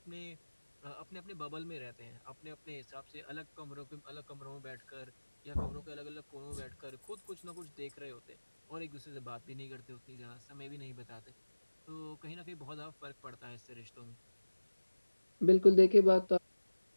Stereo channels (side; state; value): both; inverted; correlation -1.00